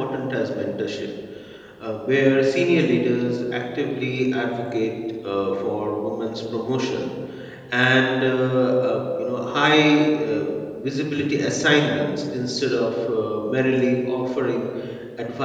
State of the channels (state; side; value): identical; both; correlation 1.00